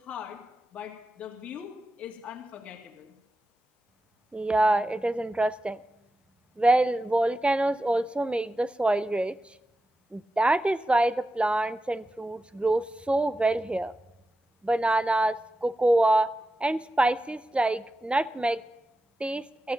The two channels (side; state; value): both; normal; correlation 0.92